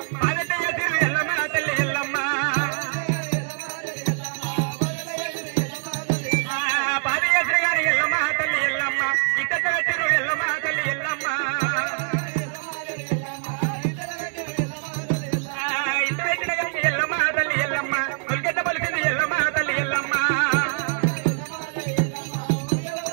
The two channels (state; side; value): silent; left; digital silence